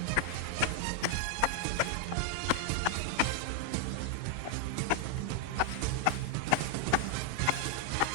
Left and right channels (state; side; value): different; both; correlation 0.00